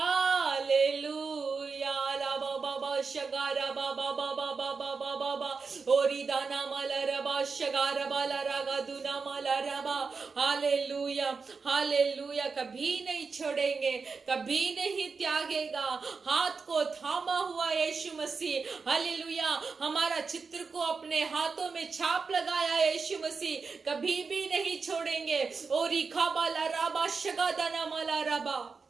ला बाबा शगारा बाबा बाबा बाबा बाबा ओरी दाना माला रबा शगारा बाला रागा दुना माला रबा। Hallelujah, hallelujah. कभी नहीं छोड़ेंगे, कभी नहीं त्यागेगा। हाथ को थामा हुआ यीशु मसीह, हालेलुया। हमारा चित्र को अपने हाथों में छाप लगाया यीशु मसीह, कभी भी नहीं छोड़ेंगे। ओरी खाबाला राबा शगा दाना माला रबा।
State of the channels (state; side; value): quieter; left; 4.9 dB